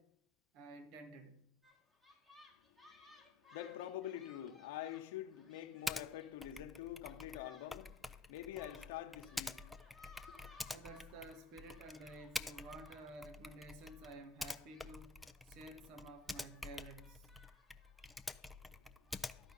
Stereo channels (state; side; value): quieter; right; 4.1 dB